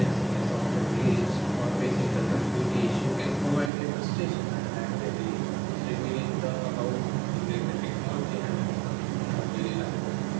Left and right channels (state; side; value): drops out; left; at 3.7 s